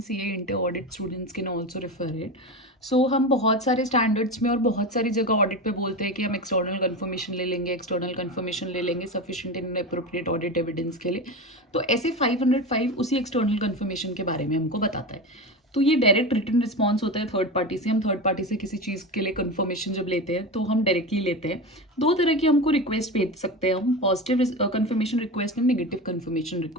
CA inter audit students can also refer it. So हम बहुत सारे standards में और बहुत सारी जगह ऑडिट पे बोलते हैं कि हम एक्सटर्नल कंफर्मेशन ले लेंगे sufficient and appropriate audit evidence के लिए. तो ऐसे 505 उसी एक्सटर्नल कंफर्मेशन के बारे में हमको बताता है. तो ये डायरेक्ट रिटन रिस्पॉन्स होता है थर्ड पार्टी से. हम थर्ड पार्टी से किसी चीज़ के लिए कंफर्मेशन जब लेते हैं तो हम डायरेक्टली लेते हैं. दो तरह की हमको रिक्वेस्ट भेज सकते हैं हम, positive confirmation request and negative confirmation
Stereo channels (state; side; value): normal; both; correlation 0.23